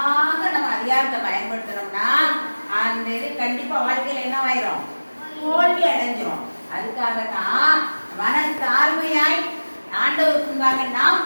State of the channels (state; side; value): inverted; both; correlation -1.00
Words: நம்ம அதிகாரத்தை பயன்படுத்துறோம்னா அந்த இது கண்டிப்பா வாழ்க்கையில என்ன ஆயிரும்? தோல்வி அடைஞ்சிரும். அதுக்காகத்தான் மன தாழ்மையாய் ஆண்டவருக்குள்ளாக நாம்